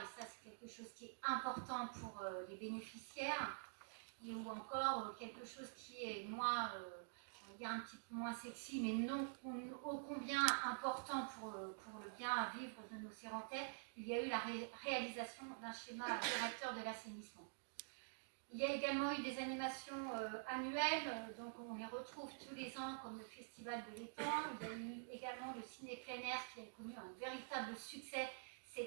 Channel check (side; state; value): left; silent; digital silence